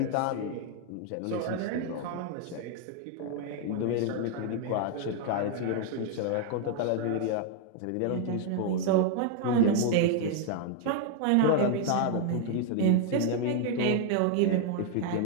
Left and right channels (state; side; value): different; both; correlation 0.00